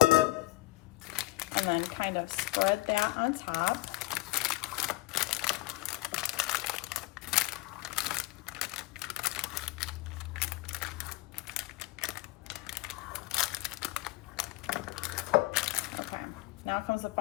And then kind of spread that on top. Now comes the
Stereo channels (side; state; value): right; quieter; 19.8 dB